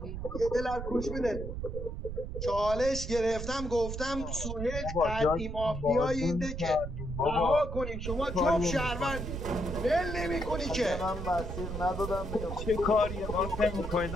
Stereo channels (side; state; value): right; noise; rumble, 6 dB below the sound